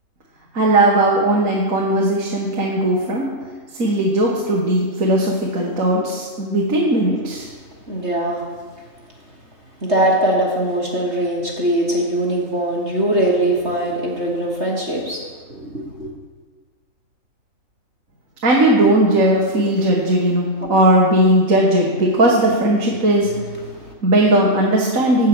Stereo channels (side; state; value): left; late; 3.2 ms